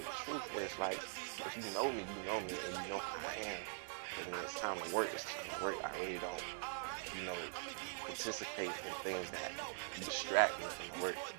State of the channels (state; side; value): silent; left; digital silence